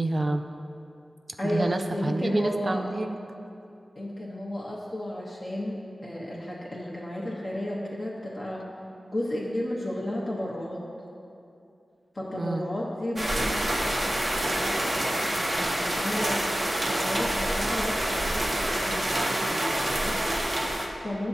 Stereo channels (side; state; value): both; normal; correlation 0.95